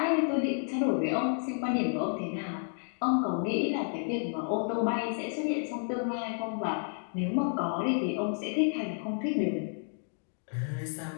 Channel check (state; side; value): silent; right; 57 dB below the other